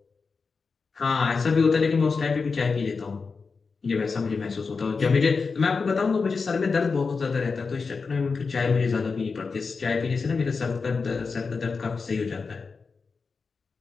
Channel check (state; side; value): quieter; right; 4.7 dB